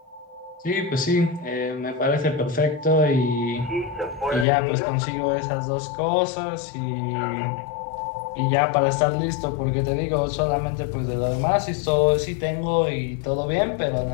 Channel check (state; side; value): drops out; right; at 4.5 s